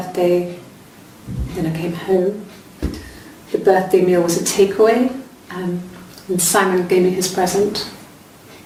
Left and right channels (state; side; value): identical; both; correlation 1.00